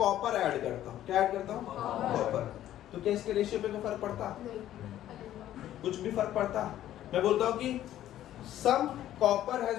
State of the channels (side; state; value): right; quieter; 12.5 dB